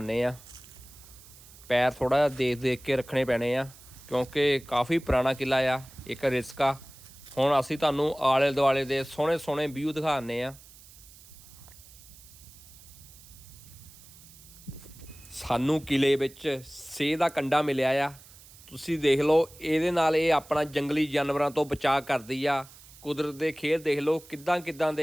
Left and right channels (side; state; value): right; noise; hiss, 21 dB below the sound